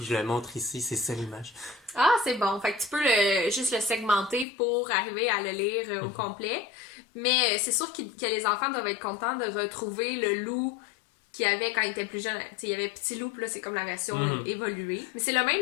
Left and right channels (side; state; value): right; drops out; at 4.5 s